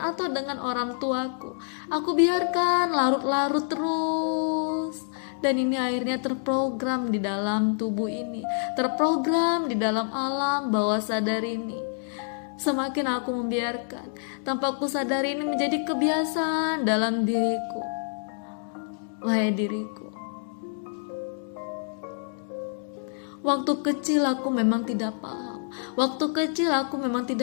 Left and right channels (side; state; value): right; silent; digital silence